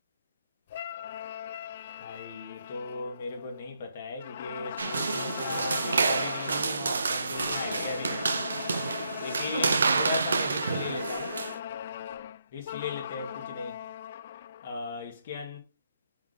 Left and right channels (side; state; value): both; inverted; correlation -0.77